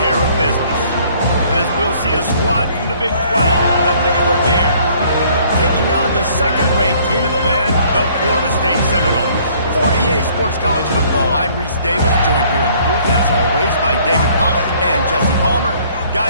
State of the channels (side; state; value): both; inverted; correlation -0.59